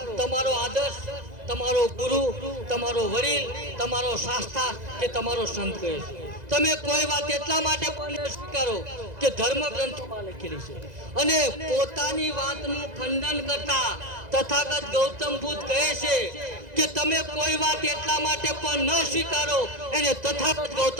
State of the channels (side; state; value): left; late; 2.0 ms